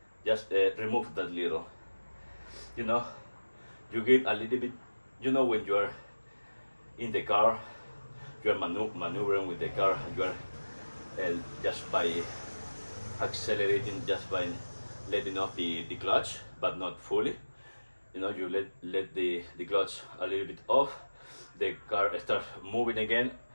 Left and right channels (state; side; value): inverted; both; correlation -1.00